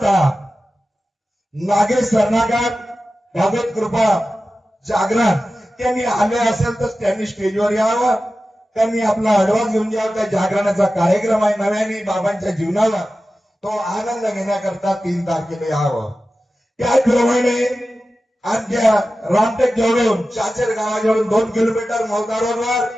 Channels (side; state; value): both; normal; correlation 0.94